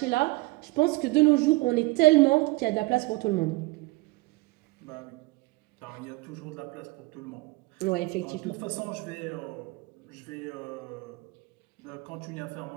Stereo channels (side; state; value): left; quieter; 22.6 dB